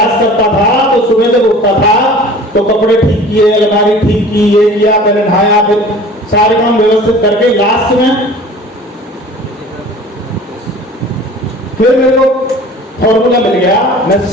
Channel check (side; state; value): both; normal; correlation 0.44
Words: करता था तो सुबह जब उठता था तो कपड़े ठीक किए, अलमारी ठीक की, ये किया, पहले नहाया, फिर सारे काम व्यवस्थित करके लास्ट में फिर मेरे को फॉर्मूला मिल गया। मैं